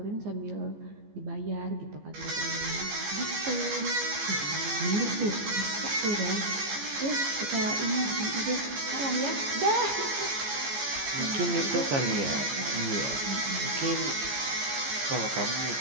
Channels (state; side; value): late; left; 14 ms